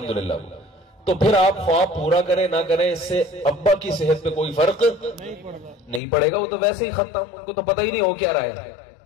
तो फिर आप ख्वाब पूरा करें ना करें, इससे अब्बा की सेहत पे कोई फर्क नहीं पड़ेगा। वो तो वैसे ही खत्म, उनको तो पता ही नहीं हो क्या रहा है,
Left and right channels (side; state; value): right; drops out; at 6.0 s